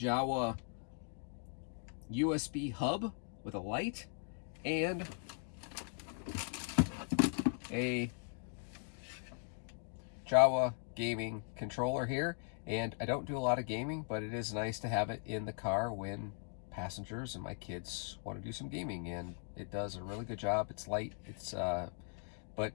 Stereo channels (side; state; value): right; silent; 52 dB below the other